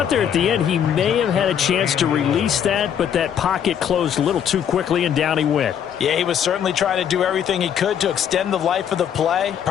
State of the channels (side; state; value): right; quieter; 8.8 dB